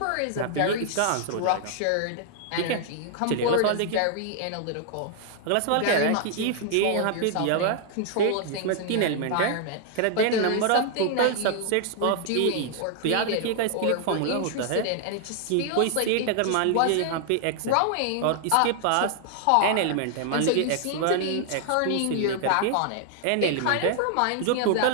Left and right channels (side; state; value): both; different; correlation 0.00